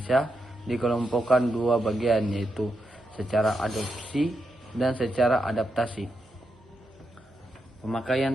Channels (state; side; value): normal; both; correlation 0.85